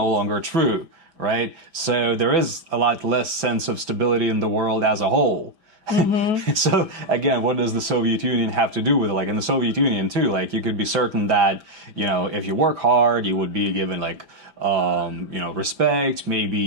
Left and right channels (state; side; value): late; left; 5.0 ms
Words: longer true, right? So there is a lot less sense of stability in the world as a whole. So again, what does the Soviet Union have to do with it? Like in the Soviet Union too, like you could be certain that, if you work hard, you would be given like, respect. Maybe